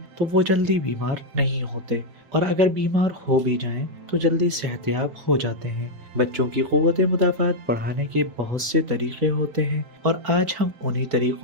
تو وہ جلدی بیمار نہیں ہوتے، اور اگر بیمار ہو بھی جائیں تو جلدی صحت یاب ہو جاتے ہیں۔ بچوں کی قوت مدافعت بڑھانے کے بہت سے طریقے ہوتے ہیں، اور آج ہم انہی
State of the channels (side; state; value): left; late; 4.8 ms